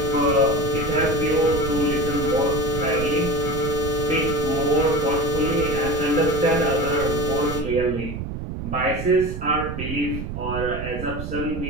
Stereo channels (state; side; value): noise; right; rumble, 6 dB below the sound